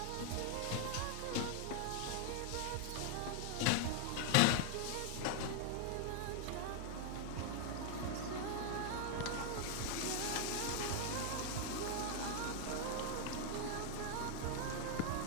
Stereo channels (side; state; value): both; different; correlation 0.00